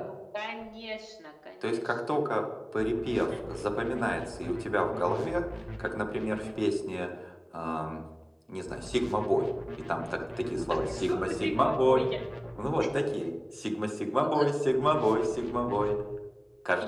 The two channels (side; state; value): both; identical; correlation 1.00